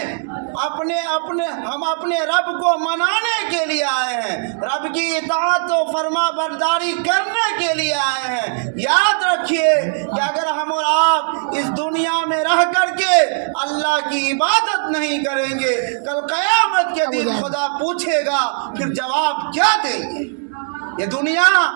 اپنے رب کو منانے کے لیے آئے ہیں، رب کی اطاعت و فرما برداری کرنے کے لیے آئے ہیں۔ یاد رکھیے کہ اگر ہم اور آپ اس دنیا میں رہ کر کے اللہ کی عبادت نہیں کریں گے، کل قیامت کے دن خدا پوچھے گا پھر جواب کیا دیں گے؟ یہ دنیا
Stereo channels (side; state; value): left; silent; 65 dB below the other